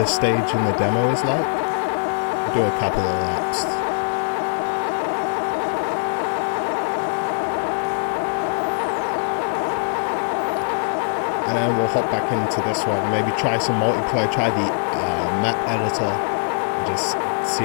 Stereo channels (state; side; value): silent; right; digital silence